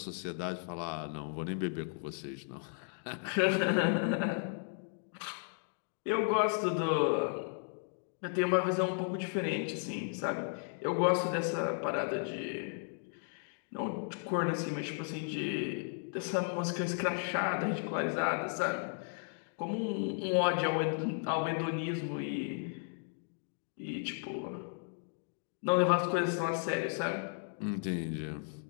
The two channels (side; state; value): right; silent; 54 dB below the other